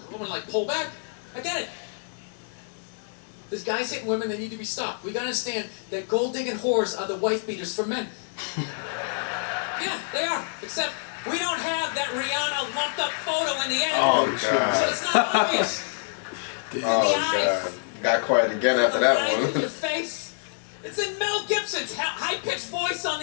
like pull back. I get it. There's guys hitting women, they need to be stopped. We gotta understand that gold digging whores are the wife beaters for men. Yeah, they are. Except we don't have that Rihanna lumped up photo in the end. Oh, God. So it's not obvious. Oh, God. Got quiet again after that one. Your face. It's in Mel Gibson's high-pitched voice on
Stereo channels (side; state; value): right; silent; digital silence